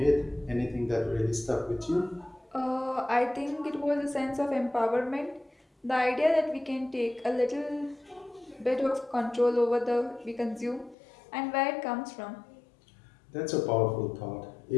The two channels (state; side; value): drops out; right; at 11.0 s